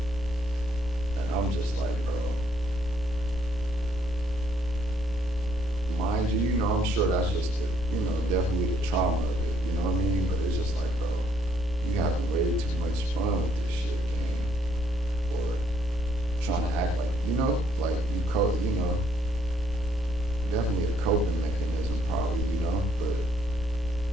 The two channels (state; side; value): normal; both; correlation 0.69